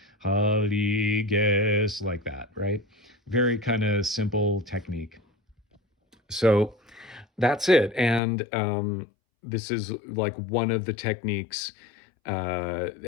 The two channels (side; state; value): right; drops out; at 8.2 s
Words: Haliges, like that, right? Very kind of simple technique. So that's it. And this is like one of the techniques.